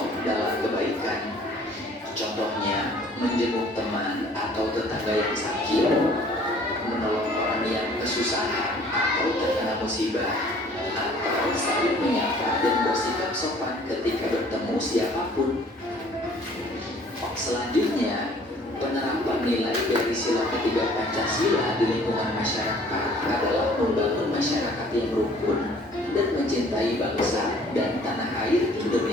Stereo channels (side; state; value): both; normal; correlation 0.54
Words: dalam kebaikan. Contohnya, menjenguk teman atau tetangga yang sakit, menolong orang yang kesusahan atau terkena musibah, atau saling menyapa dan bersikap sopan ketika bertemu siapapun. Selanjutnya, penerapan nilai dari sila ketiga Pancasila di lingkungan masyarakat adalah membangun masyarakat yang rukun dan mencintai bangsa dan tanah air